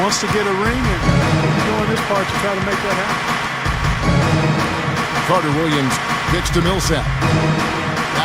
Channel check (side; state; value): both; identical; correlation 1.00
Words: to get a ring, and he's doing his part to try to make that happen. Carter Williams kicks to Millsap.